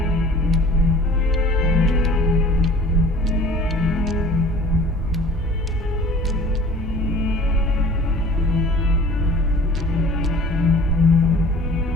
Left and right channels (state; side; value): normal; both; correlation 0.47